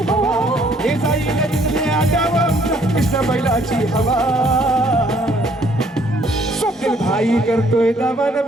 हवा हे साईला तिथले आगावा आमच्या कृष्ण बैलाची हवा स्वप्नील भाई करतोय दावा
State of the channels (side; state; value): both; normal; correlation 0.63